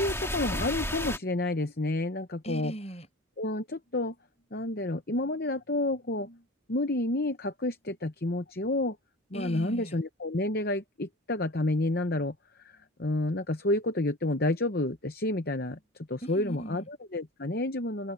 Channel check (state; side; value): normal; both; correlation 0.36